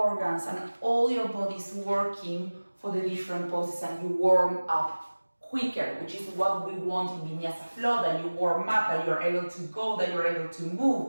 and all your body's working for the different poses, and you warm up quicker, which is what we want in Vinyasa Flow, that you warm up, that you're able to go, that you're able to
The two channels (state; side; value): inverted; both; correlation -1.00